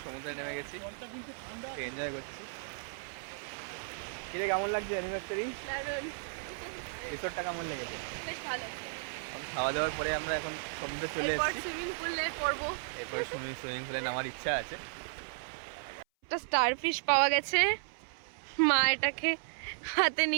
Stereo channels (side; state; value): left; silent; 55 dB below the other